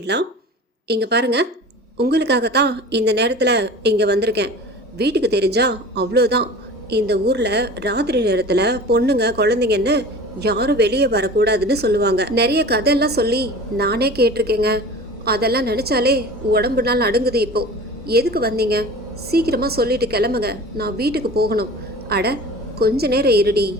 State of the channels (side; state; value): both; normal; correlation 0.38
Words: இங்கே பாருங்க, உங்களுக்காக தான் இந்த நேரத்தில் இங்கே வந்திருக்கேன். வீட்டுக்கு தெரிஞ்சா அவ்வளோதான். இந்த ஊரில் ராத்திரி நேரத்தில் பொண்ணுங்க குழந்தைங்கன்னு யாரும் வெளியே வரக்கூடாதுன்னு சொல்லுவாங்க. நிறைய கதையெல்லாம் சொல்லி நானே கேட்டிருக்கேங்க. அதெல்லாம் நினச்சாலே உடம்பு நாள் நடுங்குது. இப்போ எதுக்கு வந்தீங்க? சீக்கிரமா சொல்லிட்டு கிளம்புங்க, நான் வீட்டுக்கு போகணும். அட கொஞ்ச நேரம் இருடி,